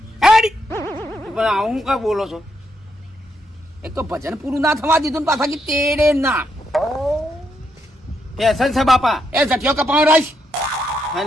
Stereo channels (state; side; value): normal; both; correlation 0.79